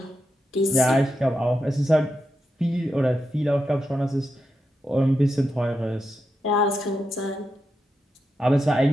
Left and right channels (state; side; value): normal; both; correlation 0.86